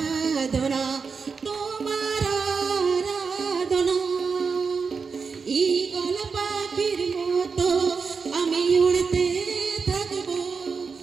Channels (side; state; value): left; quieter; 5.2 dB